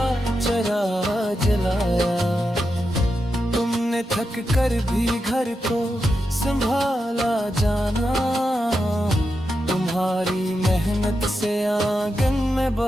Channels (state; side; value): normal; both; correlation 0.87